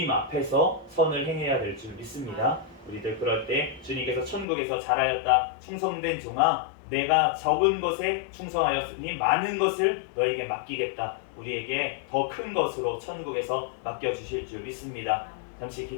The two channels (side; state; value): right; drops out; at 4.5 s